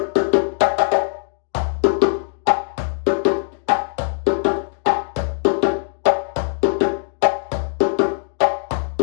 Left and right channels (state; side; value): silent; right; digital silence